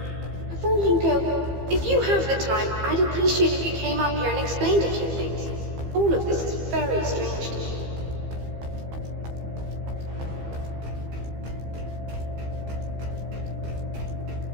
Before you go, if you have the time, I'd appreciate if you came up here and explained a few things. All of this is very strange to me.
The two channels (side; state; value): left; late; 15 ms